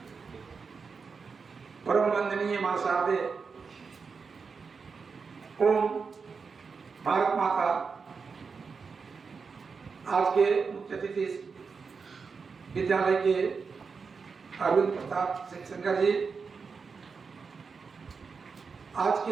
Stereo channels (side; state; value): left; quieter; 5.2 dB